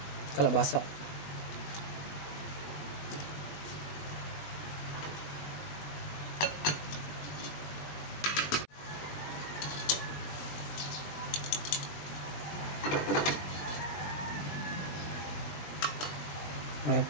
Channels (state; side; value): late; right; 20 ms